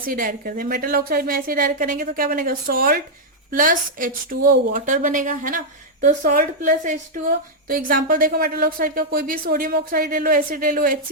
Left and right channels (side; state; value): both; normal; correlation -0.03